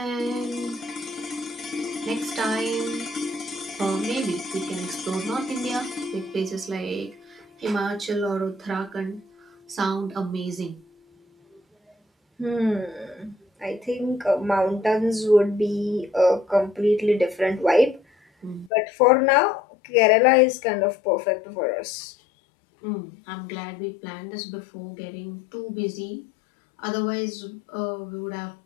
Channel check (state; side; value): drops out; right; at 18.7 s